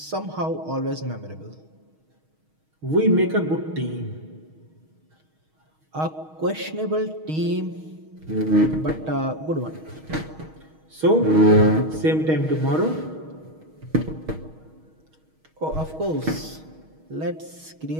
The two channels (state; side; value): late; left; 6.4 ms